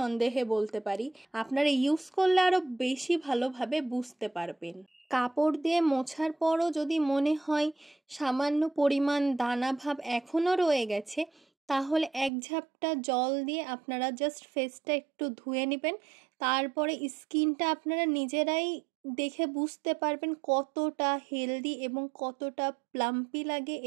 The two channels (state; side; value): drops out; left; at 12.3 s